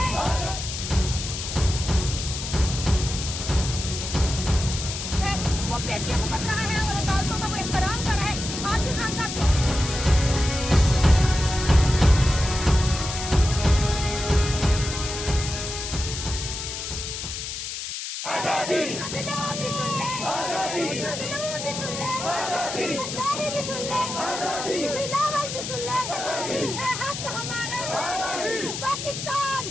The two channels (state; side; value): noise; left; hiss, 6 dB below the sound